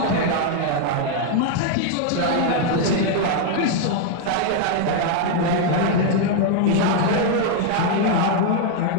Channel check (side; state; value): both; different; correlation 0.01